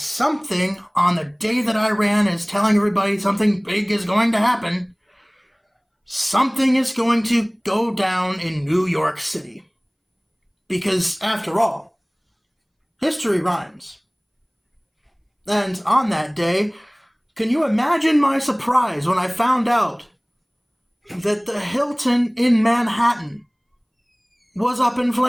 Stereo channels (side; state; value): both; identical; correlation 1.00